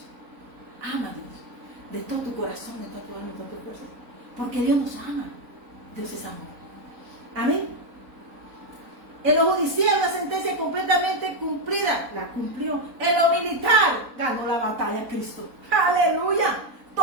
Ama a Dios de todo tu corazón, de toda tu alma, de todo tu fuerza. Porque Dios nos ama. Dios es amor. Amén. En lo judicial, la sentencia completamente cumplida, la cumplió. En lo militar, ganó la batalla Cristo. Aleluya.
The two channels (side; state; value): left; late; 4.0 ms